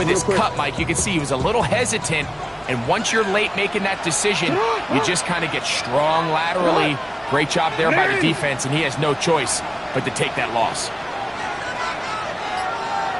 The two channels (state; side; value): identical; both; correlation 1.00